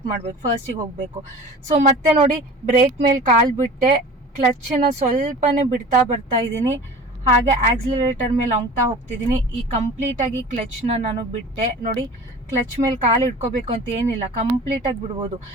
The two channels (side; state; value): both; normal; correlation 0.39